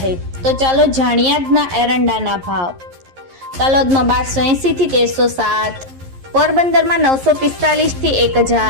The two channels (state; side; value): late; left; 11 ms